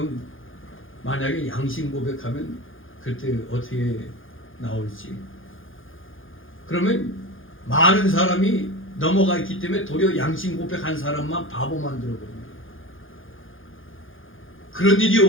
만약에 양심 고백하면 그때 어떻게 나올지 그러면 많은 사람이 넘어가 있기 때문에 도리어 양심 고백한 사람만 바보 만들어버립니다. 그런 일이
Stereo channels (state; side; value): late; right; 0.58 ms